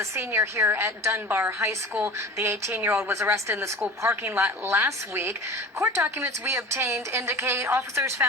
senior here at Dunbar High School. The 18-year-old was arrested in the school parking lot last week. Court documents we obtained indicate officers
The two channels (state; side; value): normal; both; correlation 0.38